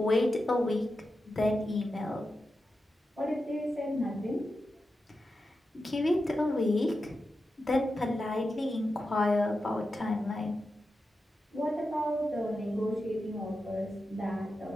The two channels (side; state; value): both; normal; correlation 0.90